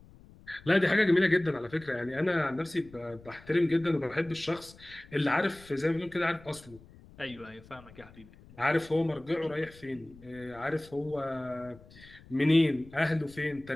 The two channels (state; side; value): noise; left; rumble, 22 dB below the sound